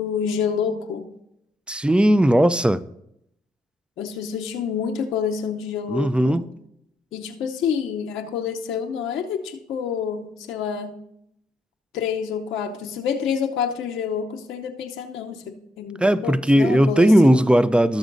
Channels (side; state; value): both; normal; correlation 0.82